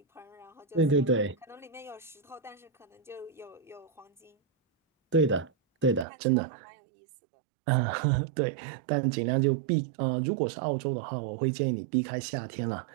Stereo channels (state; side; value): drops out; left; at 6.1 s